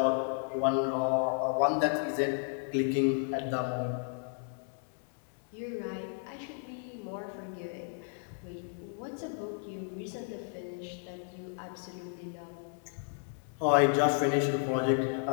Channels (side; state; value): right; silent; 56 dB below the other